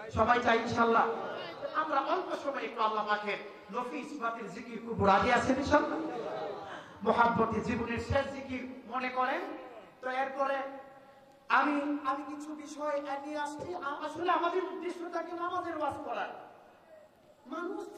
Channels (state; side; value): identical; both; correlation 1.00